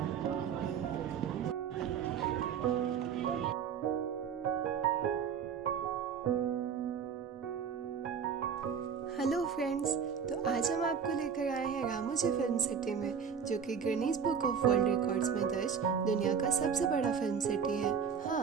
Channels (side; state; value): left; quieter; 7.0 dB